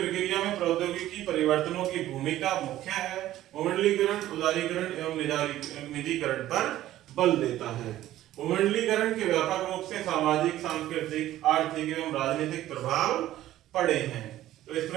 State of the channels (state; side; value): quieter; left; 14.0 dB